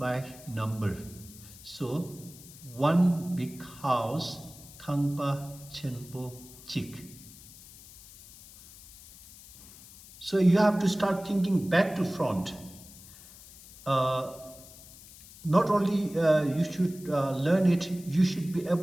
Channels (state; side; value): noise; left; hiss, 19 dB below the sound